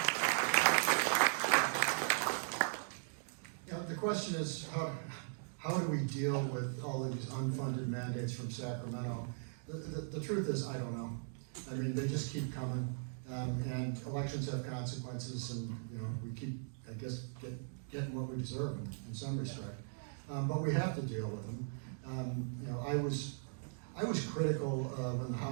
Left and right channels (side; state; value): left; silent; digital silence